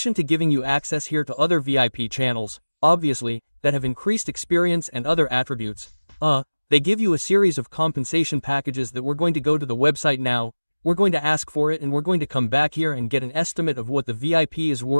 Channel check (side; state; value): both; inverted; correlation -1.00